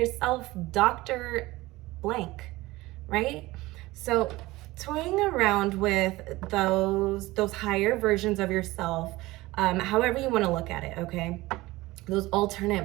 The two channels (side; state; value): left; quieter; 19.5 dB